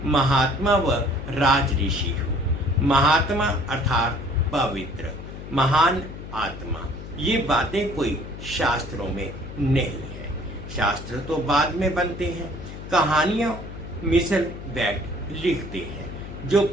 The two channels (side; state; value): left; noise; hum, 11 dB below the sound